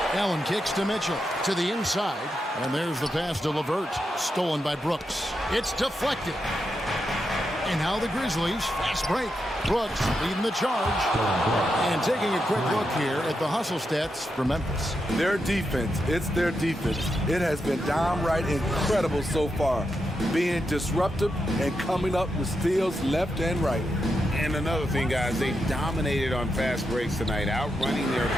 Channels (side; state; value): both; normal; correlation 0.86